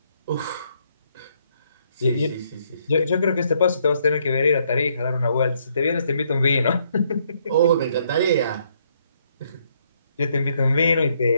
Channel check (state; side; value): inverted; both; correlation -0.71